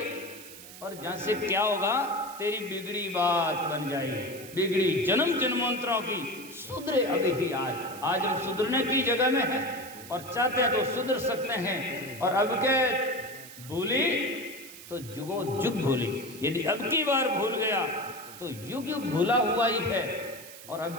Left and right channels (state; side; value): noise; right; hiss, 16 dB below the sound